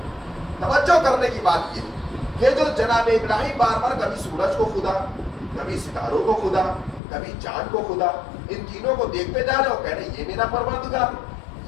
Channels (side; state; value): right; drops out; at 7.0 s